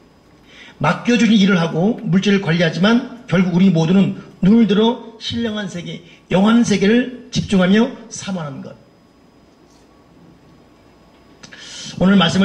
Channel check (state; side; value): identical; both; correlation 1.00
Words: 맡겨주신 일을 하고 물질을 관리하지만 결국 우리 모두는 눈을 들어 신령한 세계, 영원한 세계를 집중하며 사모하는 것. 오늘